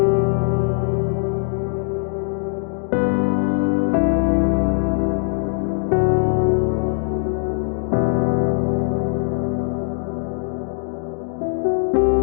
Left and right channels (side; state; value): right; silent; digital silence